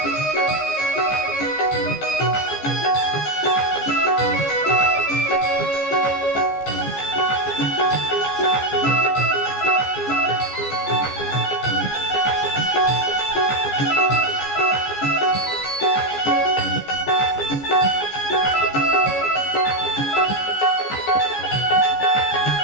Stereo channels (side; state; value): right; late; 14 ms